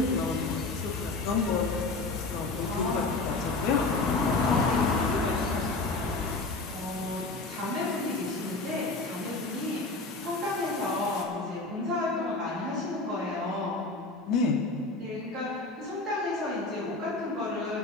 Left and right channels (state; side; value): quieter; right; 3.3 dB